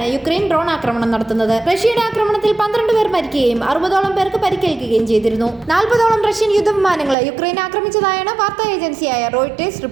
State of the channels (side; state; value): left; drops out; at 7.2 s